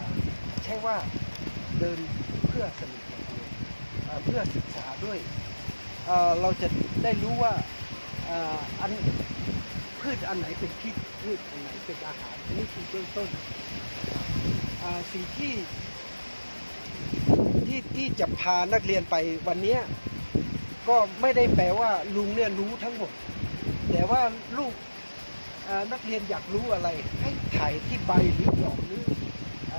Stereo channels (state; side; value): inverted; both; correlation -1.00